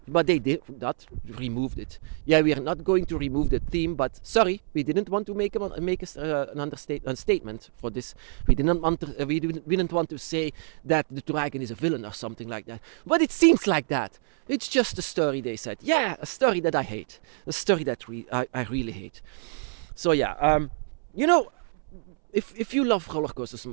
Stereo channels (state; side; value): silent; left; 60 dB below the other